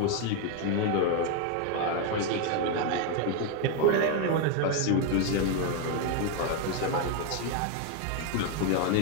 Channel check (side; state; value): both; different; correlation 0.01